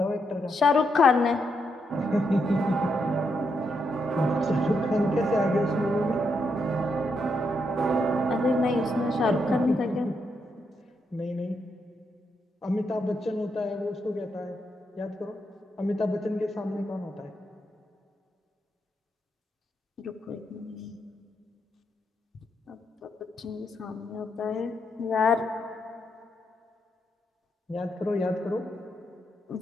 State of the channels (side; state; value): both; normal; correlation 0.80